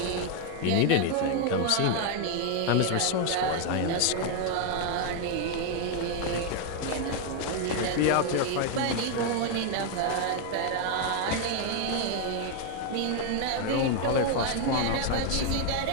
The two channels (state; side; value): different; both; correlation 0.01